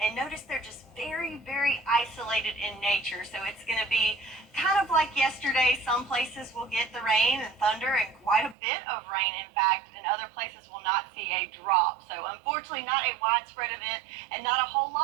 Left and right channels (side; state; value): left; drops out; at 8.6 s